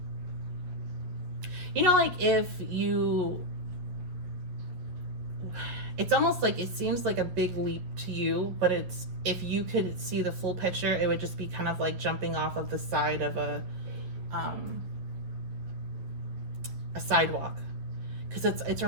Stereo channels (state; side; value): late; left; 11 ms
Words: you know, like if you, it's almost like it seems like a big leap to you, but it's, if you could see the full picture, it would just be kind of like jumping off of the side of a sidewalk. Because it's